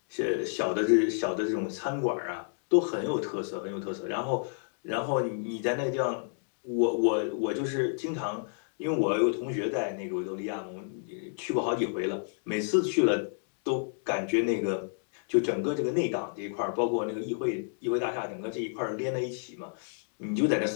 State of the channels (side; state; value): right; silent; digital silence